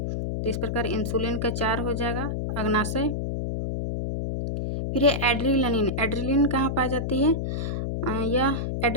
तो इस प्रकार इंसुलिन का 4 हो जाएगा, अग्नाशय। फिर है एड्रिनलिन। एड्रिनलिन कहाँ पाई जाती है? यह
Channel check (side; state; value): left; noise; hum, 2 dB below the sound